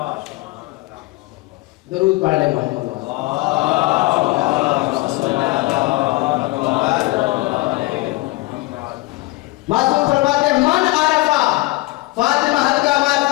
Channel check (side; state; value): right; quieter; 21.9 dB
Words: दरूद पढ़ ले मोहम्मद। मासूम फरमाते मन आरफा फातिमा हल्का